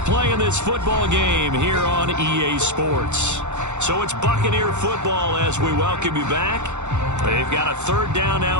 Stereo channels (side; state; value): left; late; 0.83 ms